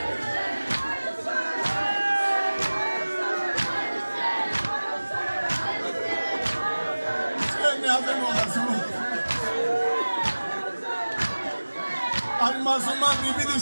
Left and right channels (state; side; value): inverted; both; correlation -1.00